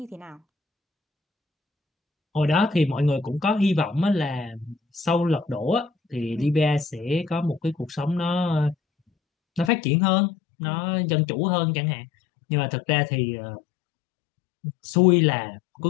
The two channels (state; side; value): drops out; right; at 9.7 s